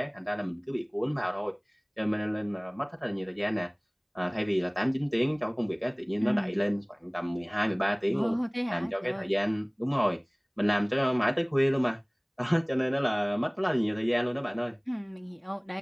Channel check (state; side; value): identical; both; correlation 1.00